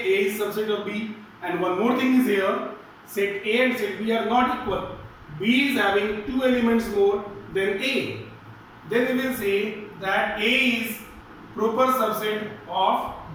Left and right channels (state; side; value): identical; both; correlation 1.00